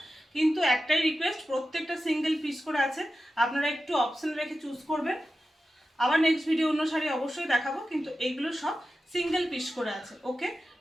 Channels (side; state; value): both; normal; correlation 0.93